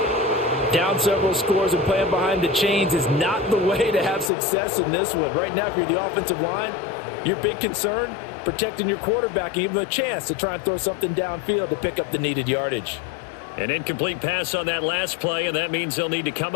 Down several scores and playing behind the chains is not the way to have success in this one. Right now, if you're the offensive line, your big concern, protecting your quarterback and give him a chance to try and throw something downfield to pick up the needed yardage. An incomplete pass on that last play, and that means they'll need to come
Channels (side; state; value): right; drops out; at 4.3 s